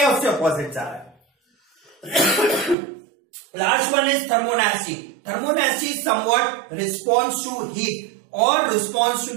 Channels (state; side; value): drops out; left; at 2.8 s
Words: या उससे अपोजिट जा रहा है। Last one is thermonasty. Thermonasty is somewhat response to heat और response to